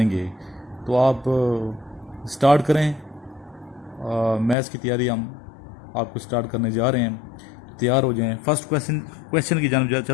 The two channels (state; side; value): drops out; right; at 4.5 s